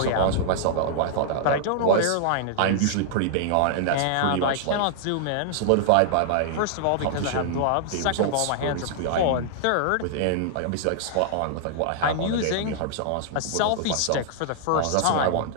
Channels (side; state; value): both; different; correlation -0.01